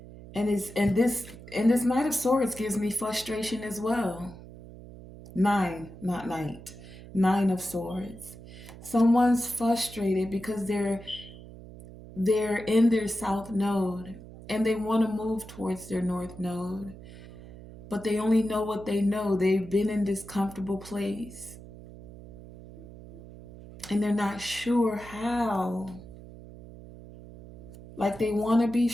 And this Knight of Swords gives me frustration as well. Nine, not night. Nine of Swords. Someone's frustrated because they're in their south node and they want to move towards their north node, but they only know what they know. They've been in this comfortable place and they're not sure how. Like they want to be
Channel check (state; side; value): noise; right; hum, 16 dB below the sound